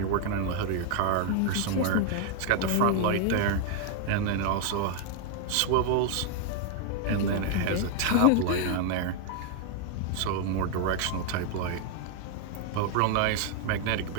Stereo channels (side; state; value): both; different; correlation 0.00